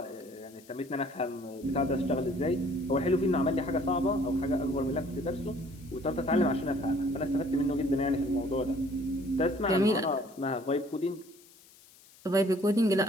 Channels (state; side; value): noise; left; hiss, 25 dB below the sound